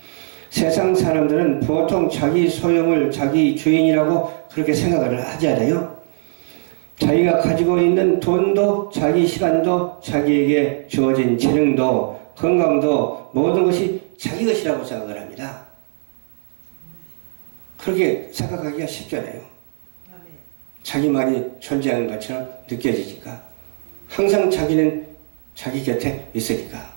세상 사람들은 보통 자기 소용을 자기 주인이라고 그렇게 생각을 하지 않아요. 자기가 가지고 있는 돈도 자기 시간도 자기에게 주어진 재능도 건강도 모든 것이 자기 것이라고 생각을 합니다. 그렇게 생각하기가 쉽잖아요. 자기만이 존재하는 것처럼 느껴지니까 항상 자기는 자기 곁에 있으니까.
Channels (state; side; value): silent; left; 60 dB below the other